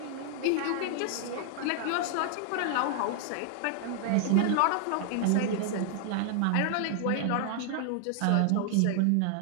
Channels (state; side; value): different; both; correlation 0.00